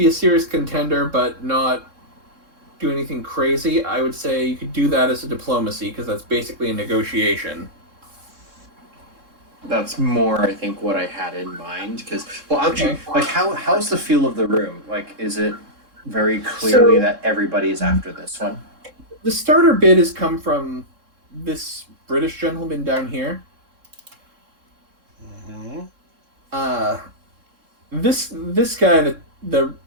a serious contender, but not do anything crazy, I would say you could do that as a diplomacy because that's basically a negotiation. That's more, I think, what I had in mind. Because, well, actually, like, how's the feel of the room? Like, is it very clearly that everybody is after this one? The starter bid has come from this British gentleman down here. Mm-hmm. This guy, the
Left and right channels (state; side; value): late; left; 3.7 ms